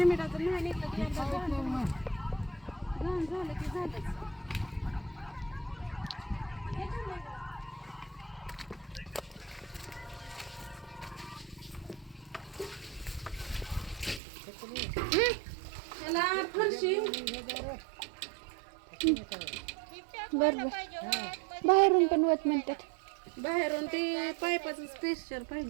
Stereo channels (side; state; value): left; drops out; at 14.2 s